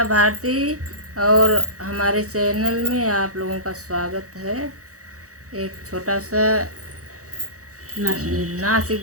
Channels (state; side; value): late; left; 0.65 ms